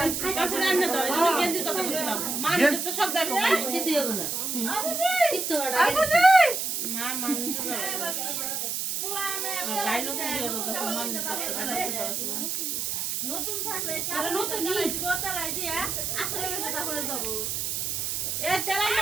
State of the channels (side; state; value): right; noise; hiss, 1 dB below the sound